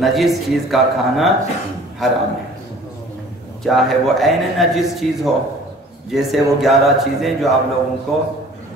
چیز کا کھانا حرام ہے، چاہے وہ عین نجس چیز ہو، جیسے وہ 11 چیزیں جو آپ لوگوں کو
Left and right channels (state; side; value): normal; both; correlation 0.49